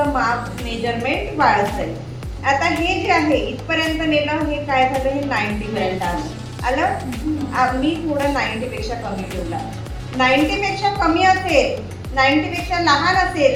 माप मेजरमेंट वाढत जाईल. आता हे जे आहे इथपर्यंत नेलं, हे काय झालं, हे 90 पर्यंत आलं. मी थोडं 90 पेक्षा कमी ठेवला. 90 पेक्षा कमी असेल, 90 पेक्षा लहान असेल,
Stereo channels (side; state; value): both; identical; correlation 1.00